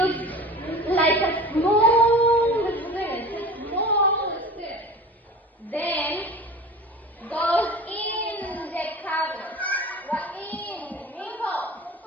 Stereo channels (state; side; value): normal; both; correlation 0.37